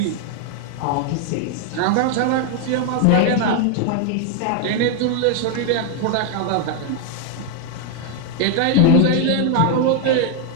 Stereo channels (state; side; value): different; both; correlation 0.00